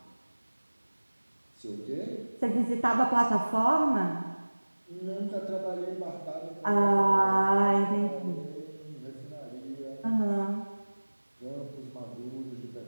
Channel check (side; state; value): both; inverted; correlation -1.00